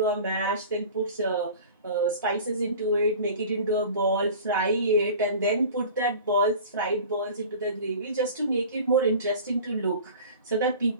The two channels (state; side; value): inverted; both; correlation -0.40